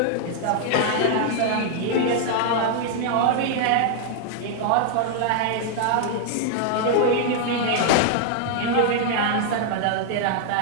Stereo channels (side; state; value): both; different; correlation 0.00